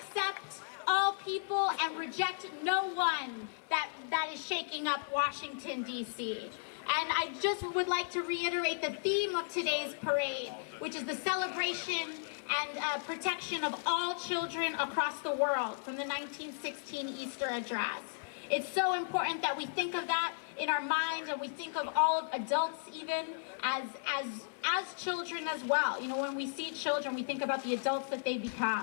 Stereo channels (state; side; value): silent; right; 54 dB below the other